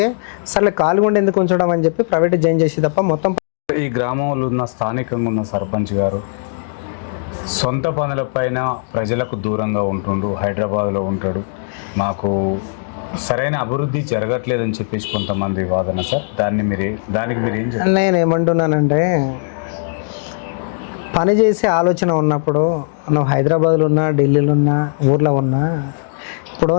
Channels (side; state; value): right; silent; digital silence